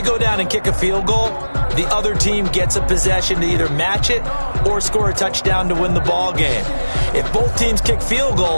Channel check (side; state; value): both; inverted; correlation -1.00